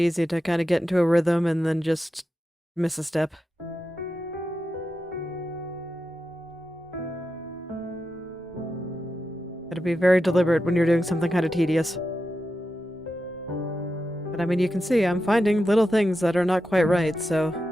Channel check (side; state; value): both; normal; correlation 0.89